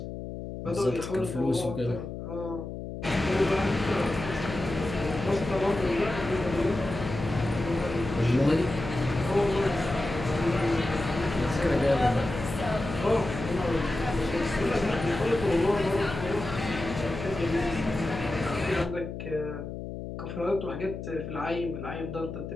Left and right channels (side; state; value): left; noise; hum, 8 dB below the sound